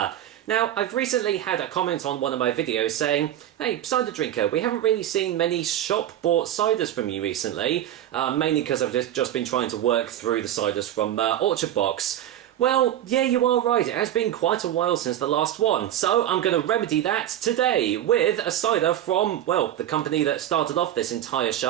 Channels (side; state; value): left; quieter; 11.8 dB